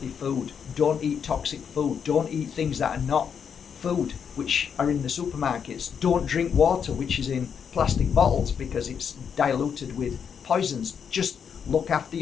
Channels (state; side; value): quieter; right; 7.2 dB